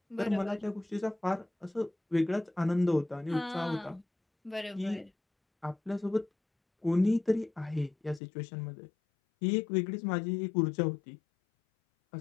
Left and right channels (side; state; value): right; drops out; at 8.2 s